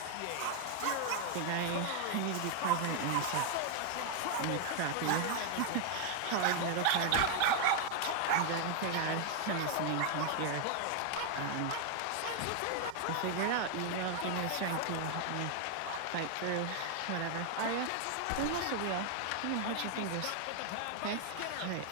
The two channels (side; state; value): both; different; correlation 0.00